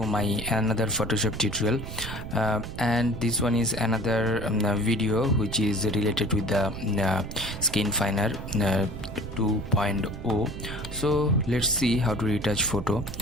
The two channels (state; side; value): noise; right; rumble, 9 dB below the sound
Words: my another Photoshop tutorial, and this one is another video which is related with the Skinfiner 2.0. So let's see how to retouch photo,